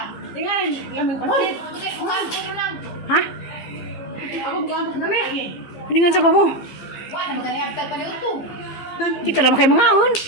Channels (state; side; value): late; right; 15 ms